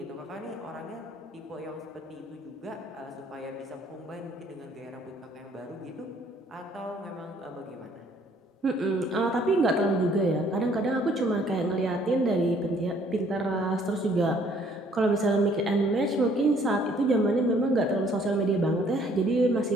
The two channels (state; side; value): normal; both; correlation 0.61